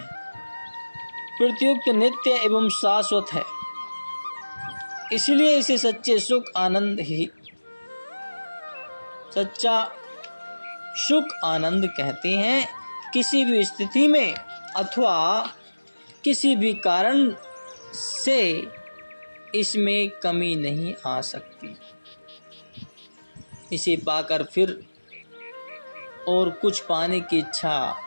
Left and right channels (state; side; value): inverted; both; correlation -1.00